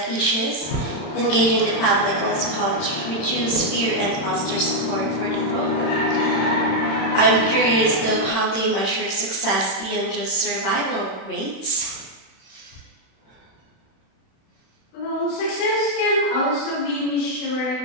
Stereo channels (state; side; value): late; right; 31 ms